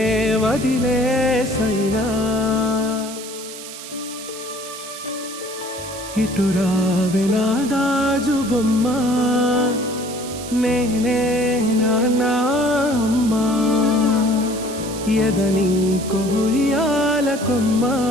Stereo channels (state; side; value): noise; right; hiss, 12 dB below the sound